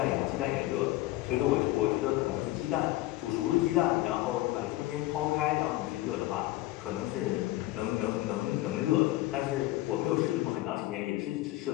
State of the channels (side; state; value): right; quieter; 17.5 dB